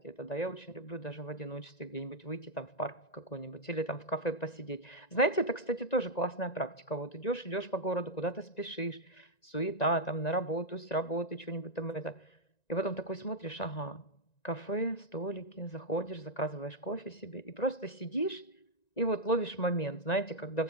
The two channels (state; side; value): late; right; 1.9 ms